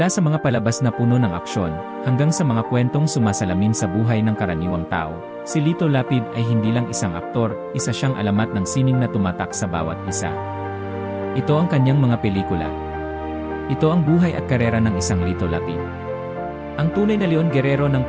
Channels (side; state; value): both; identical; correlation 1.00